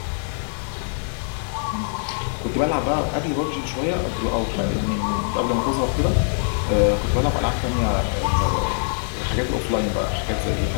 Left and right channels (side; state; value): right; silent; digital silence